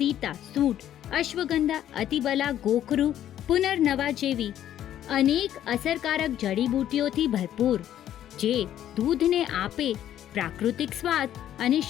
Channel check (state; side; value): quieter; right; 11.4 dB